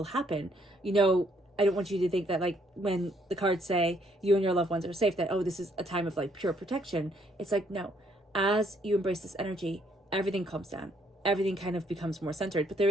happen. I don't want you to think that like when the cards say you and your loved ones are safe, that, oh, this is a time of like pure protection. It's like, no, as you embrace this energy, everything calms down. Everything kind of becomes more centered. But there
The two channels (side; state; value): both; normal; correlation 0.68